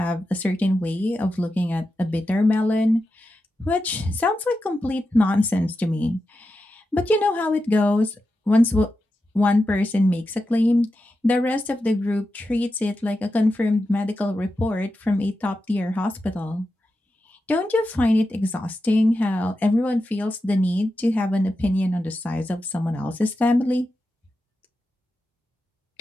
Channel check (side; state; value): both; normal; correlation 0.90